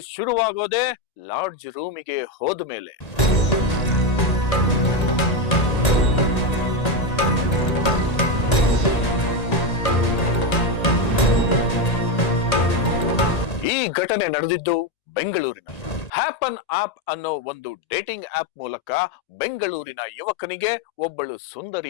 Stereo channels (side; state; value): right; late; 1.8 ms